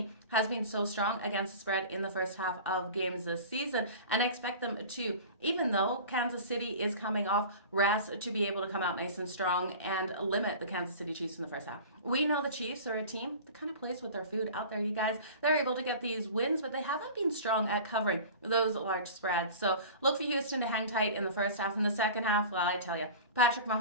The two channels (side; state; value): both; inverted; correlation -0.37